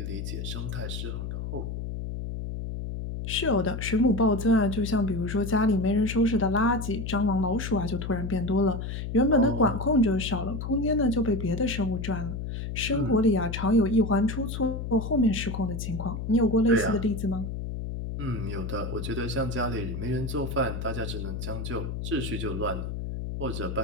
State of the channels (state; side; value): noise; left; hum, 5 dB below the sound